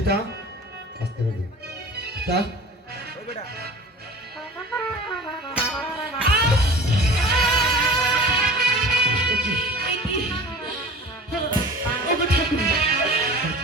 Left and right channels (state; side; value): normal; both; correlation 0.41